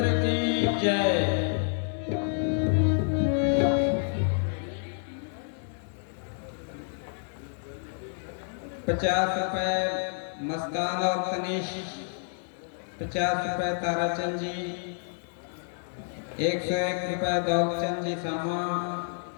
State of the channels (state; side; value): silent; right; digital silence